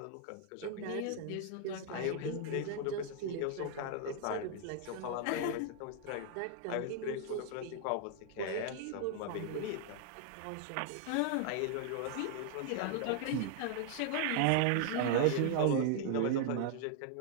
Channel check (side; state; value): both; different; correlation 0.00